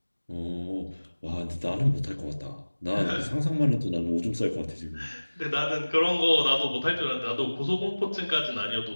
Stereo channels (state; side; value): inverted; both; correlation -1.00